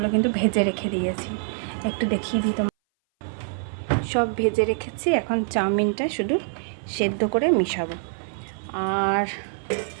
কিন্তু ভেজে রেখে দিয়েছি, একটু দেখিয়ে দিই তোমার। সব ভেজে রেখেছি, এখন চাউমিনটা শুধু সেদ্ধ করে মিশাবো। আর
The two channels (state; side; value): silent; left; 58 dB below the other